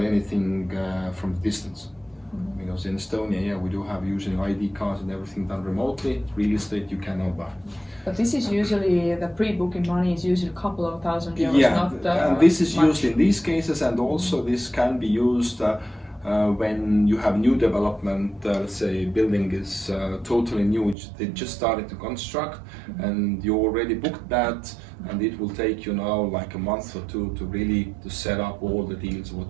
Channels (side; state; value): left; drops out; at 21.0 s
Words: anything from distance. Because in Estonia, yeah, we do have using ID cards and everything done remotely. Real estate you cannot buy. But this is usually, the pre-booking money is usually a couple of thousand euros, yeah, not and this is much. used in these cases, and also this can be used When you have new development, let's say building is totally new, they just started to construct, and you already booked that, and it will take you now like a month or two to really to set up all the deals